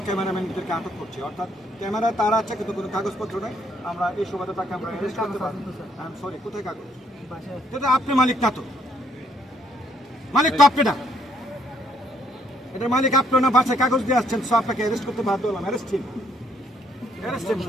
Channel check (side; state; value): both; normal; correlation 0.68